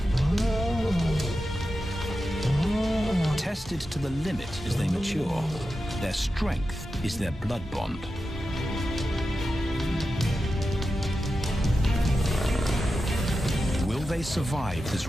Tested to the limit as they mature, their strength is their blood bond. Will they survive this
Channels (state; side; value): normal; both; correlation 0.91